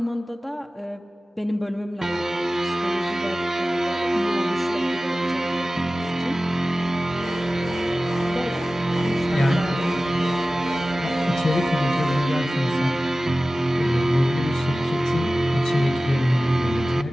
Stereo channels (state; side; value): normal; both; correlation 0.96